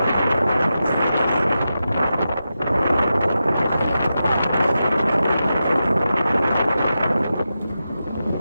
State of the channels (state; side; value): inverted; both; correlation -0.90